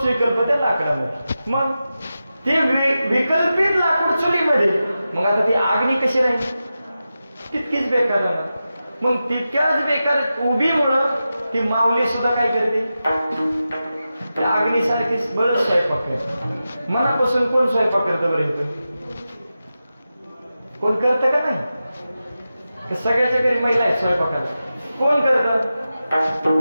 विकल्प त्या लाकडामध्ये. मग ते विकल्पित लाकूड चुलीमध्ये, मग आता ती आग्नी कशी राहील? तितकीच बेकार राहणार. मग तितक्याच बेकार उभीमुळं ती माऊली सुद्धा काय करते, त्या अग्नीसारखी बरंच स्वयंपाक करते. मनापासून कोण स्वयंपाक करतं बरं इथं? कोण करतं का नाही? सगळ्याच्या घरी महिला आहेत स्वयंपाकाला. कोण करतं?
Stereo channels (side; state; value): both; inverted; correlation -0.92